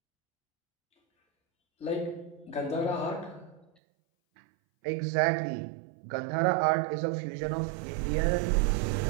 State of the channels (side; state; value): left; drops out; at 3.7 s